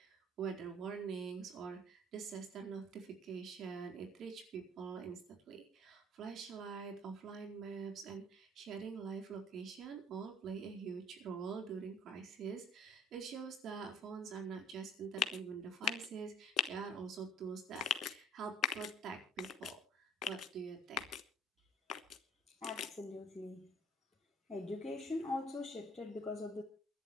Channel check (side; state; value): both; normal; correlation 0.56